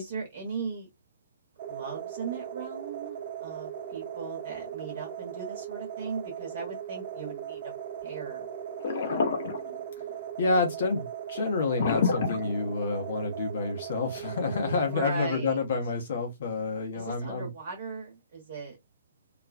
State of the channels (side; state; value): both; inverted; correlation -0.56